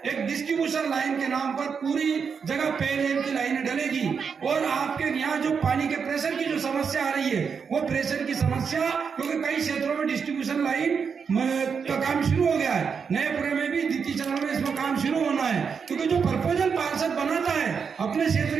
एक डिस्ट्रीब्यूशन लाइन के नाम पर पूरी जगह पेयजल की लाइनें डलेगी और आपके यहाँ जो पानी के प्रेशर की जो समस्या आ रही है, वो प्रेशर की समस्या, क्योंकि कई क्षेत्रों में डिस्ट्रीब्यूशन लाइन का काम शुरू हो गया है, नएपुरे में भी द्वितीय चरण में इसमें काम शुरू होना है। क्योंकि जो प्रपोजल पार्षद बनाता है अपने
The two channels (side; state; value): left; quieter; 6.1 dB